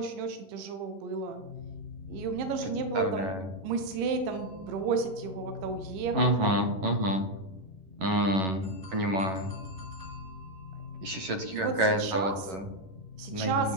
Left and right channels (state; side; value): late; left; 11 ms